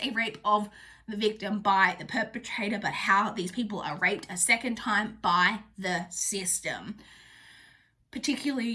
a rape of the victim by the perpetrator, but how these people are raped a second time by the system.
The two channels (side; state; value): both; identical; correlation 1.00